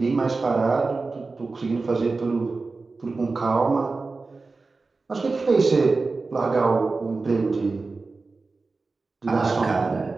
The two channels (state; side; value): quieter; left; 3.9 dB